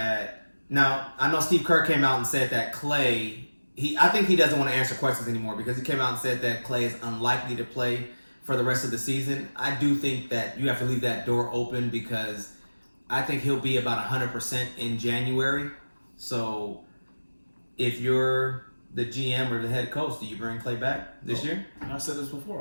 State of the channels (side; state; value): both; inverted; correlation -1.00